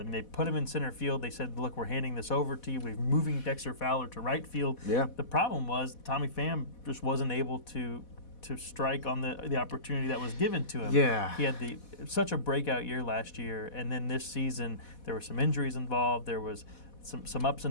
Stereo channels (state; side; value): late; right; 4.1 ms